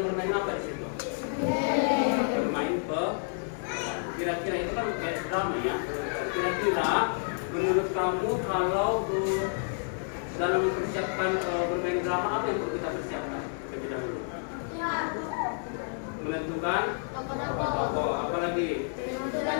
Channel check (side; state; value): right; silent; 58 dB below the other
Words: bermain apa di situ? Bermain kira-kira itu kan kayak drama ya. Kira-kira menurut kamu kalau dalam mempersiapkan bermain drama apa yang perlu kita persiapkan terlebih dahulu? Menentukan tokoh, apalagi? Menentukan